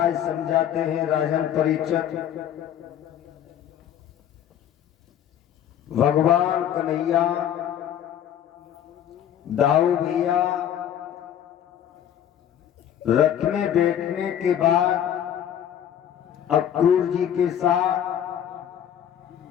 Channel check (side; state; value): right; quieter; 10.1 dB